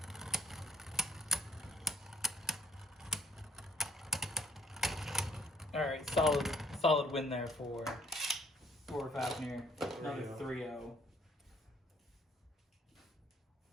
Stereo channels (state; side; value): normal; both; correlation 0.63